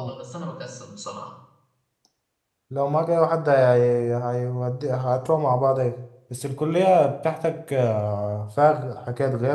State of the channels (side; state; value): both; identical; correlation 1.00